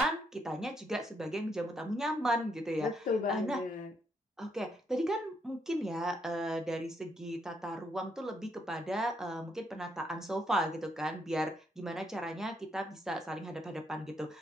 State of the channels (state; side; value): normal; both; correlation 0.75